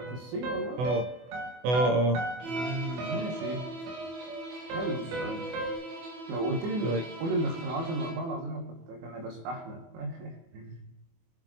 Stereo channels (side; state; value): left; late; 24 ms